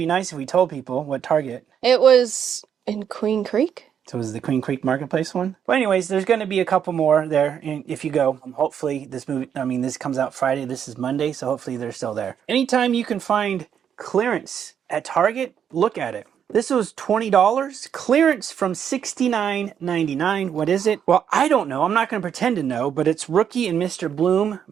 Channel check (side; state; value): left; quieter; 8.4 dB